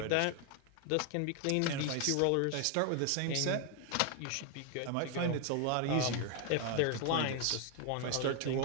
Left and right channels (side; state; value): both; different; correlation 0.01